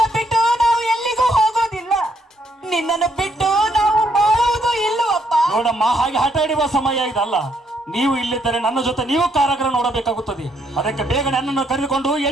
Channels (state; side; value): normal; both; correlation 0.72